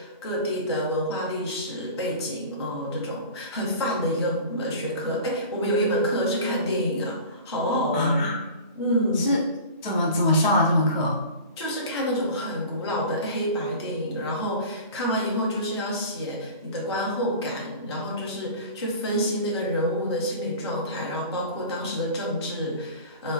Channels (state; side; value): inverted; both; correlation -0.37